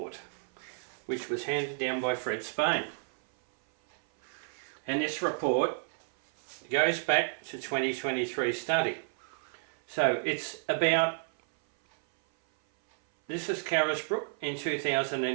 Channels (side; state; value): left; silent; 56 dB below the other